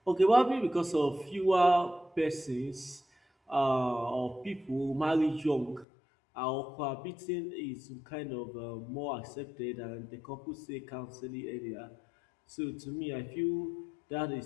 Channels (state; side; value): drops out; right; at 5.9 s